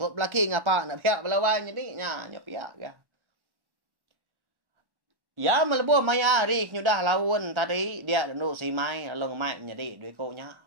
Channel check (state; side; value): late; left; 1.1 ms